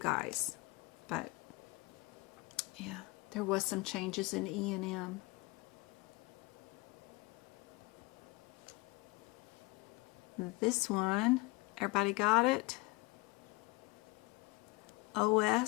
But yeah, there was some changes in E&M. This one, everybody got it?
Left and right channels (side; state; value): right; quieter; 23.9 dB